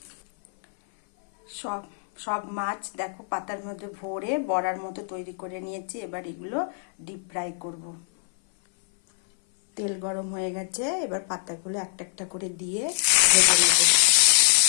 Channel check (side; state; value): right; silent; 58 dB below the other